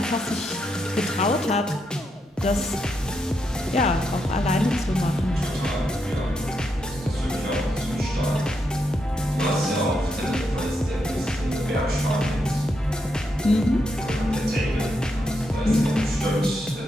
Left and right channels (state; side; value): normal; both; correlation 0.82